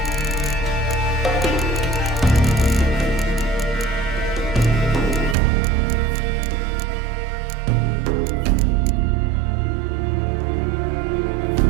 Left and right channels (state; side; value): drops out; left; at 5.4 s